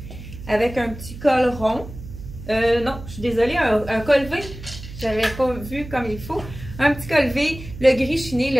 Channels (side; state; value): right; noise; hum, 13 dB below the sound